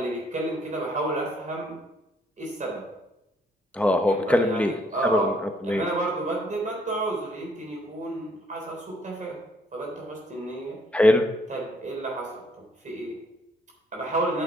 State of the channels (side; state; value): both; normal; correlation 0.67